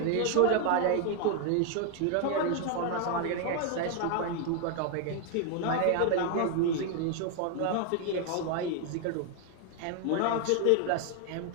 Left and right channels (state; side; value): different; both; correlation 0.00